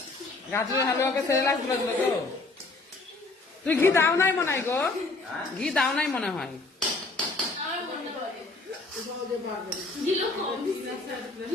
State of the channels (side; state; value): right; quieter; 3.4 dB